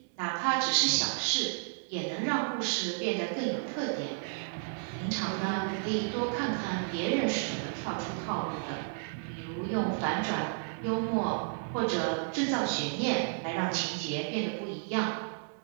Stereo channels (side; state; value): left; silent; 56 dB below the other